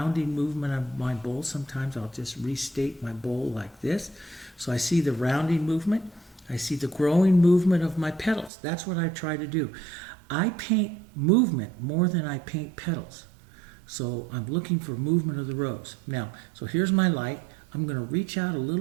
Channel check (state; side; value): drops out; left; at 8.5 s